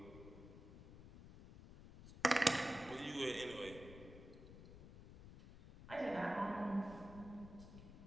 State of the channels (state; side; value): noise; left; rumble, 15 dB below the sound